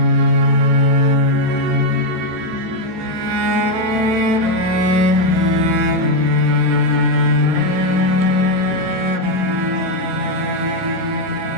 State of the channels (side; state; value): right; late; 4.7 ms